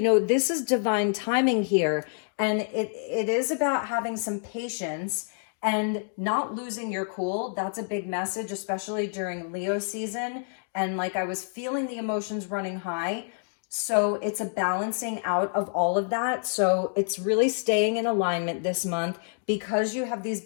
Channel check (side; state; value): right; silent; 60 dB below the other